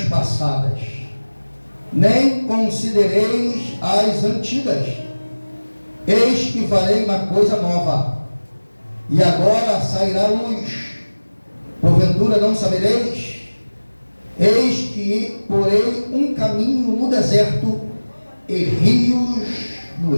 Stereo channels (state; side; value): inverted; both; correlation -1.00